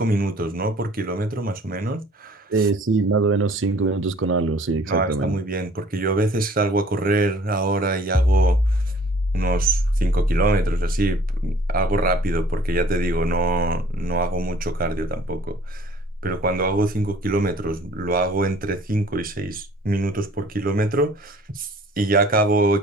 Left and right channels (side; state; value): both; normal; correlation 0.53